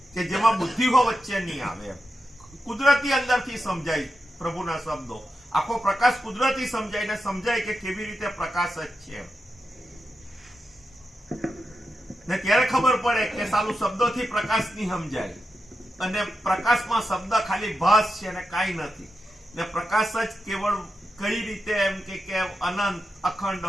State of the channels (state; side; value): normal; both; correlation 0.88